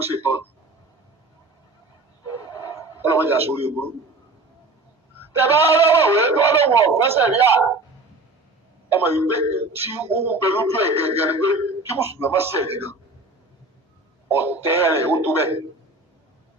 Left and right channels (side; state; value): left; quieter; 3.1 dB